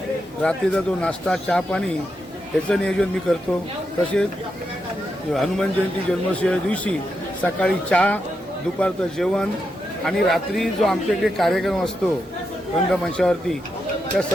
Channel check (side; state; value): both; normal; correlation 0.85